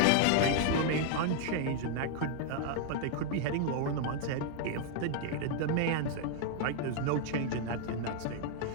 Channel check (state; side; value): different; both; correlation 0.00